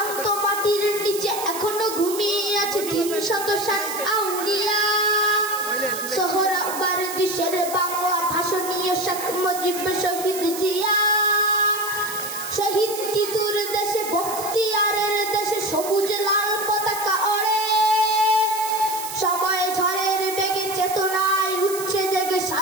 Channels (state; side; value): noise; right; hiss, 9 dB below the sound